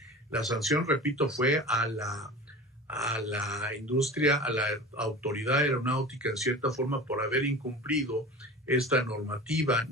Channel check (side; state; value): both; normal; correlation 0.35